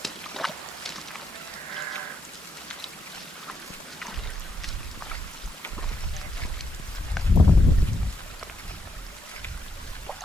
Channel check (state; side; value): normal; both; correlation 0.79